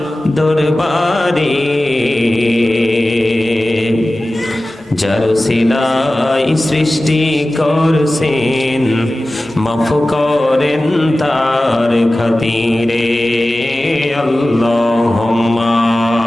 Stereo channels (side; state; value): both; normal; correlation 0.96